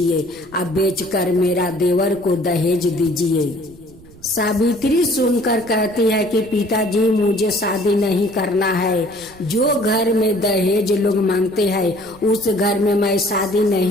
अब बेचकर मेरा देवर को दहेज दीजिए। सावित्री सुनकर कहती है कि पिताजी, मुझे शादी नहीं करना है। जो घर में दहेज लोग मांगते हैं उस घर में मैं शादी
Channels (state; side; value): noise; right; rumble, 23 dB below the sound